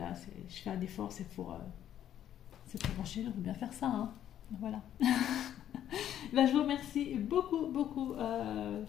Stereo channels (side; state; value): right; quieter; 10.8 dB